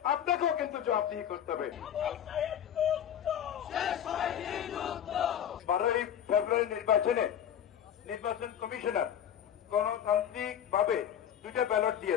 আপনাকেও কিন্তু জবাবদিহি করতে হবে। 12ই ফেব্রুয়ারি নির্বাচনে নির্বাচন কমিশনার গণতান্ত্রিক ভাবে 2টা ব্যালট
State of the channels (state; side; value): quieter; right; 9.7 dB